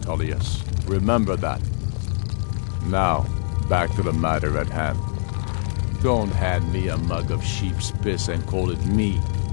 Remember that. Now, back to the matter at hand. Don't hand me a mug of sheep's piss and call it mead.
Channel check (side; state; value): right; silent; digital silence